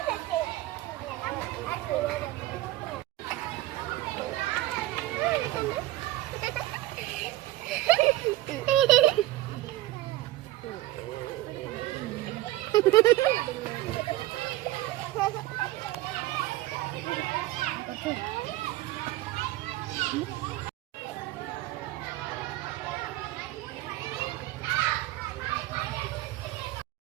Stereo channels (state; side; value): quieter; left; 16.7 dB